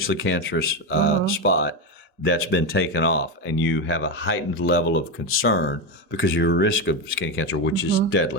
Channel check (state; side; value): normal; both; correlation 0.13